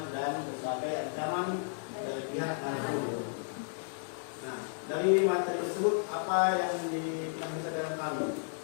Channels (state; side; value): silent; right; digital silence